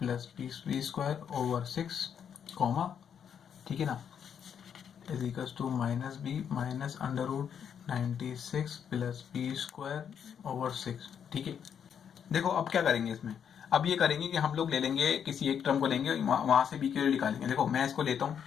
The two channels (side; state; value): right; quieter; 8.0 dB